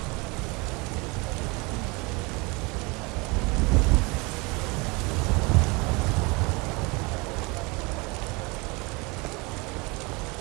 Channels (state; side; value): quieter; left; 27.0 dB